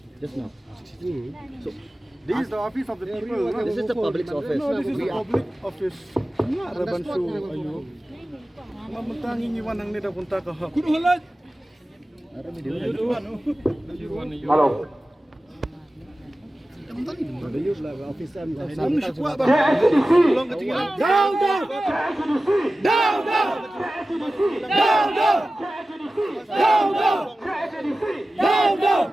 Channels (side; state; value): both; normal; correlation 0.95